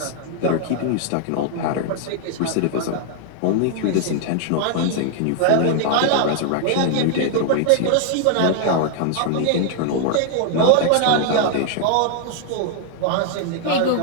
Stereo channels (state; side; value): different; both; correlation 0.00